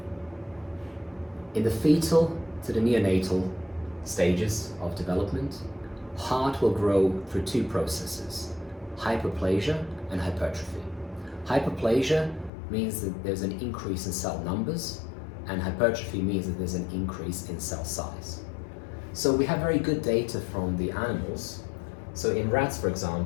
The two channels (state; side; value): drops out; right; at 12.5 s